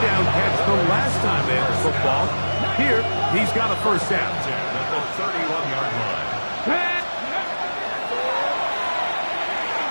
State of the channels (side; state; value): both; inverted; correlation -1.00